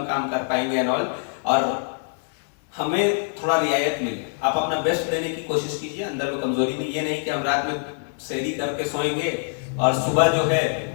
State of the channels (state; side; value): silent; right; digital silence